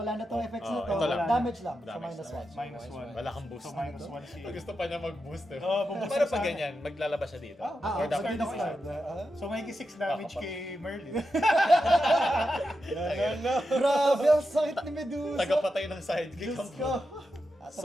na tong effects na to. ito lang. Damage lang. So Damage minus lang. 1. Minus 1. Wala kang boost. So minus 1 si... Gusto pa niya mag-boost eh. Oo, buboost Pero sa pag akin. ganyan, maglalabas siya dito. Or So dapat dito ko decision. So may 6 damage kay Merlin. Grabe, ang sakit ni Medusa. Tagapatay ng sidekick Diyos ang ko. Tapos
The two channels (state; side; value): normal; both; correlation 0.88